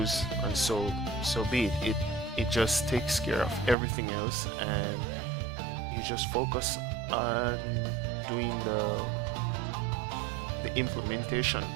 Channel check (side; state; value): left; drops out; at 3.8 s